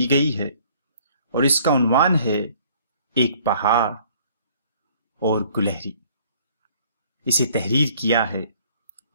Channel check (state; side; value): inverted; both; correlation -0.58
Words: گئی ہے اور اس کا عنوان ہے ایک پہاڑ اور گلہری۔ اسے تحریر کیا ہے